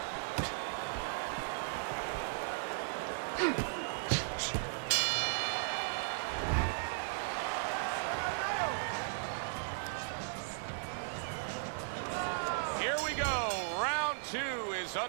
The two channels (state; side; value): silent; left; digital silence